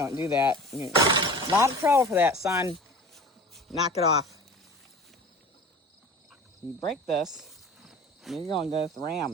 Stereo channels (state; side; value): normal; both; correlation 0.39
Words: do that. A lot of trouble for that, son. Knock it off. You break this, you're going to the